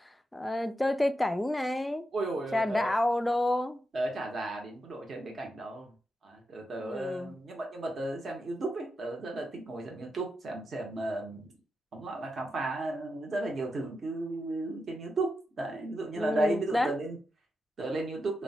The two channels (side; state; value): both; normal; correlation 0.87